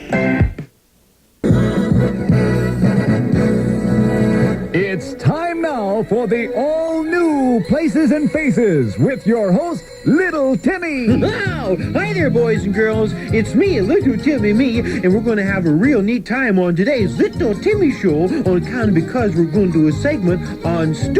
It's time now for the all-new Places and Faces with your host, Little Timmy. Wow! Hi there, boys and girls. It's me, Little Timmy and we're going to have a real neat time on today's Little Timmy Show on account of because we're going to do a segment on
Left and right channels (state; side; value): identical; both; correlation 1.00